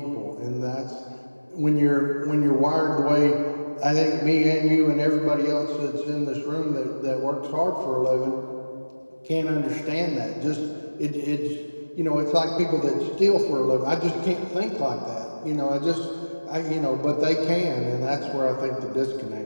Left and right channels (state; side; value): inverted; both; correlation -1.00